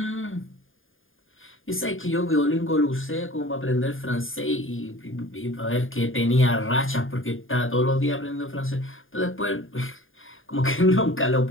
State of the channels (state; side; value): late; right; 0.59 ms